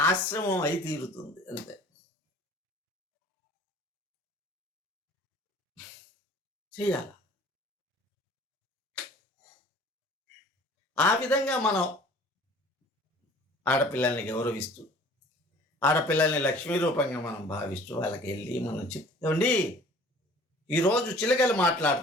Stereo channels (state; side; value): normal; both; correlation 0.49